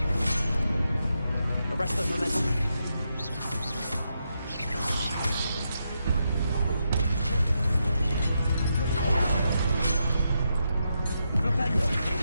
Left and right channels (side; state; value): both; inverted; correlation -0.84